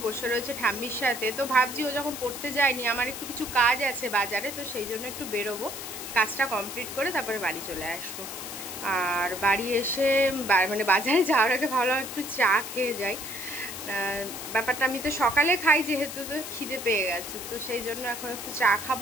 বসে রয়েছে ঠাম্মির সাথে। তো ভাবছি ও যখন পড়তে যায়নি, আমার একটু কিছু কাজ আছে বাজারে, তো সেই জন্য একটু বেরোবো, কাজটা কমপ্লিট করে তারপরে বাড়ি চলে আসবো। আর বাড়ি এসে মানে বাজারে যাওয়ার আগে ভাবলাম একটু চা খেয়ে যাই। ব্যাপারটা আমি তো সকালে খাই যেহেতু, তো খিদে পেয়ে গেছে, তো সেই জন্য এখন একটু চা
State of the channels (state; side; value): noise; left; hiss, 8 dB below the sound